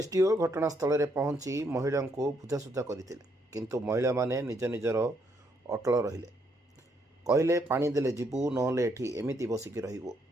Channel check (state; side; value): normal; both; correlation 0.73